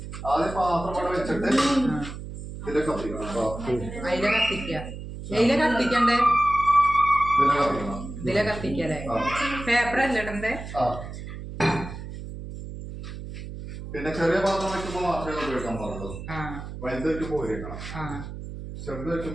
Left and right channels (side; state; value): right; noise; hum, 10 dB below the sound